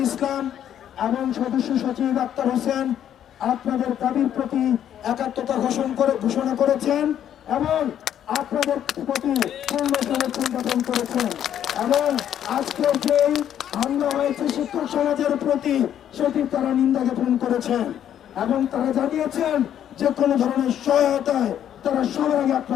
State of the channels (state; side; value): quieter; right; 10.2 dB